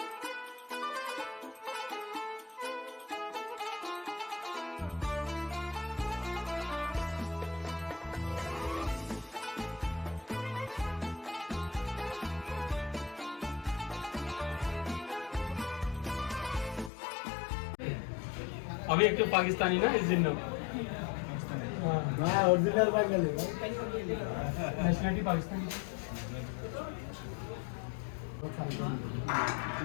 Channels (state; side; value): drops out; right; at 16.9 s